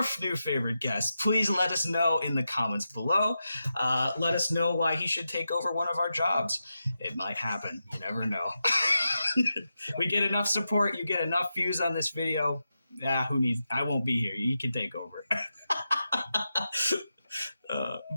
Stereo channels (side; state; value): both; inverted; correlation -0.89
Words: new favorite guest, please let us know in the comments below. Let us know why he should take over one of our jobs. It might happen. You never know. We get enough support. You get enough views on this video. I won't be here. You can take over.